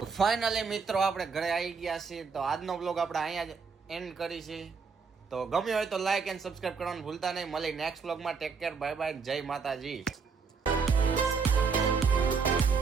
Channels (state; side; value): quieter; left; 5.3 dB